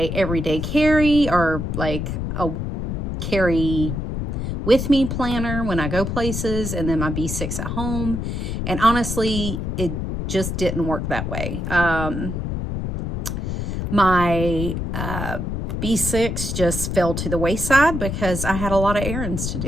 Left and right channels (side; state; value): left; noise; rumble, 3 dB below the sound